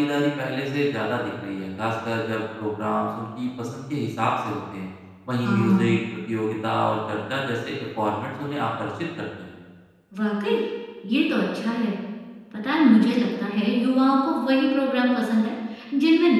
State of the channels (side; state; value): both; identical; correlation 1.00